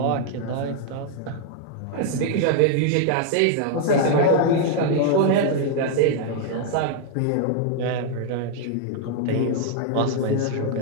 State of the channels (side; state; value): both; different; correlation -0.01